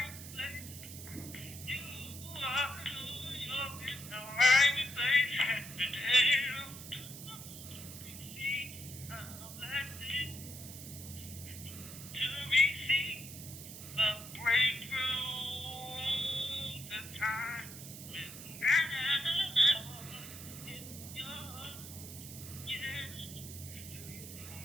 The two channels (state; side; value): noise; right; hiss, 12 dB below the sound